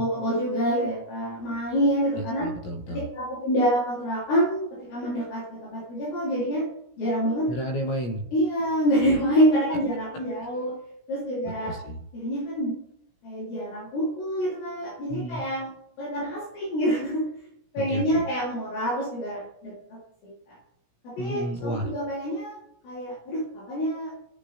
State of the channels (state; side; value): late; right; 17 ms